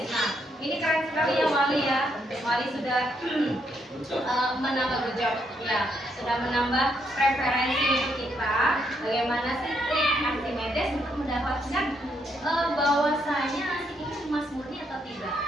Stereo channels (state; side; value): normal; both; correlation 0.76